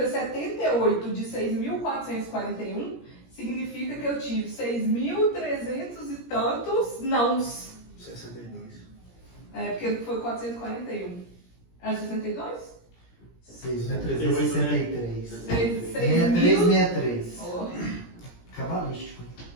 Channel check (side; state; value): right; late; 17 ms